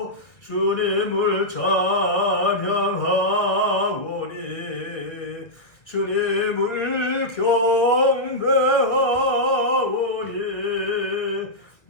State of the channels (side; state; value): right; late; 1.4 ms